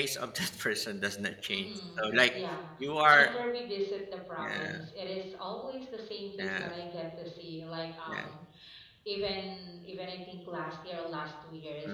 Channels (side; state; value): both; identical; correlation 1.00